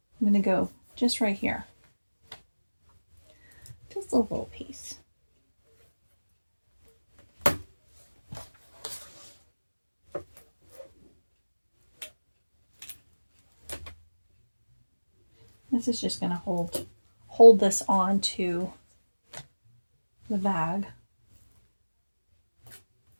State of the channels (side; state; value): both; inverted; correlation -1.00